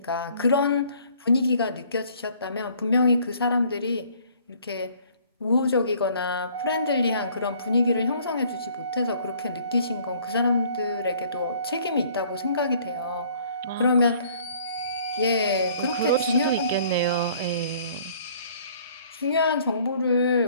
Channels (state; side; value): inverted; both; correlation -0.57